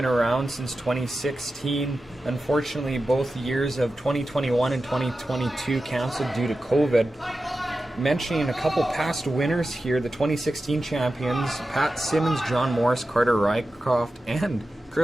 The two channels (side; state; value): both; normal; correlation 0.93